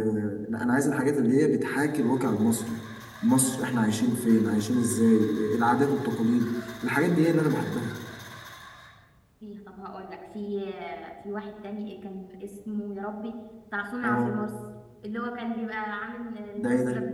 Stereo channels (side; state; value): both; identical; correlation 1.00